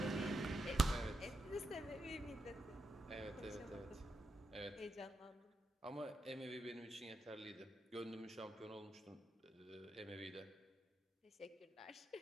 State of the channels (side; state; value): both; normal; correlation 0.85